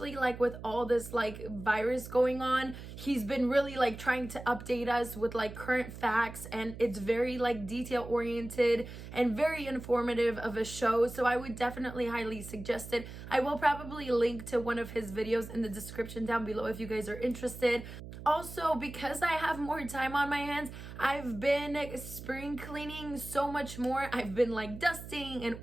with all this virus going on. He's been really trying to update us with current facts, and it's very detail oriented and very informative of a show. So I would definitely highly suggest it. I will probably link to one of his videos in the description down below if you guys are interested. Also, because I have more time on my hands, I've been spring cleaning so much more. I've been dusting and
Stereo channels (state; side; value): noise; right; hum, 12 dB below the sound